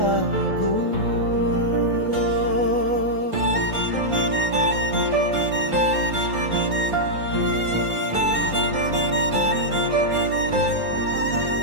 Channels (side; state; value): left; late; 3.8 ms